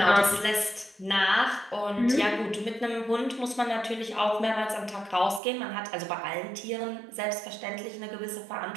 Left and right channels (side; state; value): left; drops out; at 5.4 s